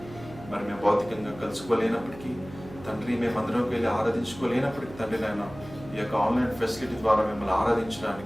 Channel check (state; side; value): noise; right; hum, 16 dB below the sound